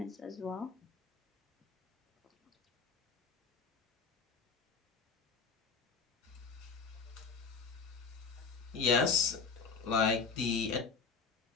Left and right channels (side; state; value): right; quieter; 5.3 dB